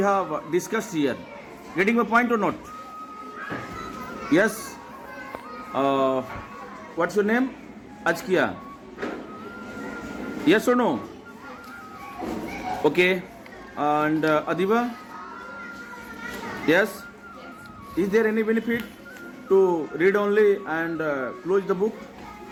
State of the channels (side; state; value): both; identical; correlation 1.00